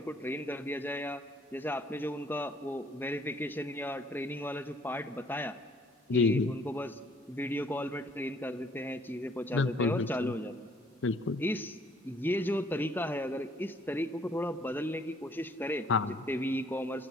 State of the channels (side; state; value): both; normal; correlation 0.61